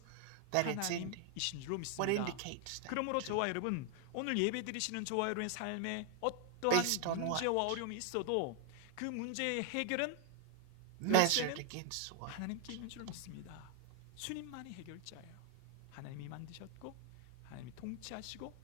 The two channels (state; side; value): different; both; correlation 0.01